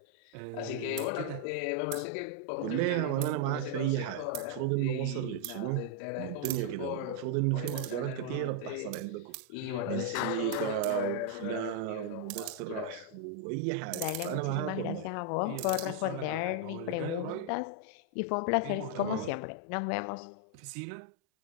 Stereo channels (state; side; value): different; both; correlation 0.00